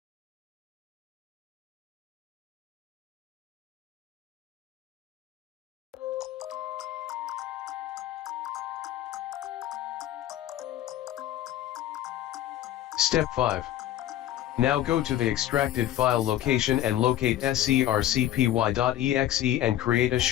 Step 5. Now go to the extracted file location and locate scrcpy.exe and create a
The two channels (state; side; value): quieter; right; 12.7 dB